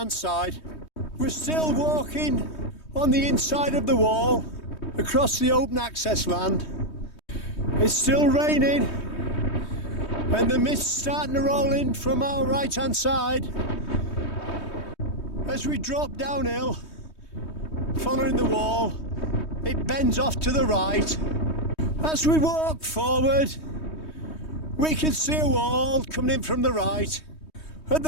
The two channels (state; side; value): late; right; 3.2 ms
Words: side. We're still walking on the inside of the wall across the open access land. It's still raining and the mist's starting to roll in from our right hand side. As we drop downhill, following the wall, it bends off to the right. As we walk forward, we can see a wall coming in from the right. At